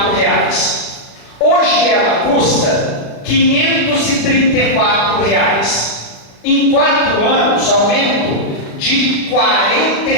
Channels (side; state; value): right; late; 36 ms